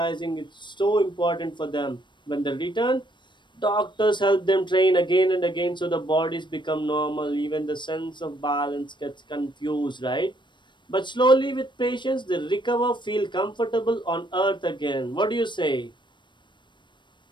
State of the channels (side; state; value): right; late; 0.22 ms